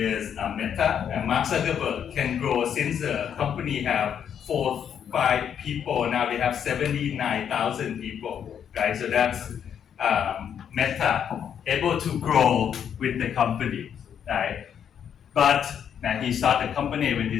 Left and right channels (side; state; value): right; quieter; 8.5 dB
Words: Meta, and Mark Zuckerberg can grow since the company have 4-5 people. Now they have 79,000 people, right? So that's Meta able to grow with the company, right? But now he started the company when